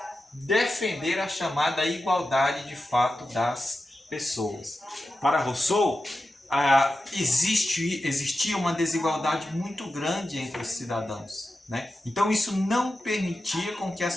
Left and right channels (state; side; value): normal; both; correlation 0.92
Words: defender a chamada igualdade de fato das pessoas. Para Rousseau, existia uma desigualdade muito grande entre os cidadãos, né? Então isso não permitia com que